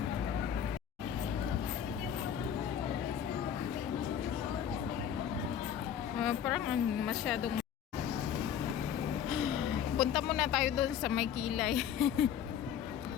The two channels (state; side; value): quieter; right; 9.1 dB